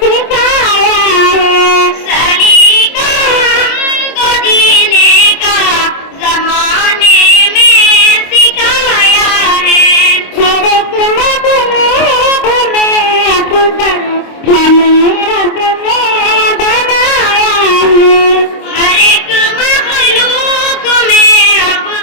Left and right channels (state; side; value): late; right; 26 ms